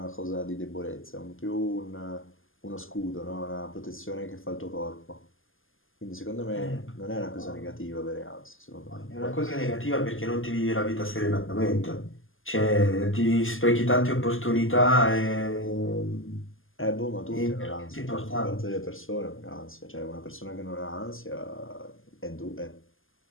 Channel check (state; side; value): late; right; 0.59 ms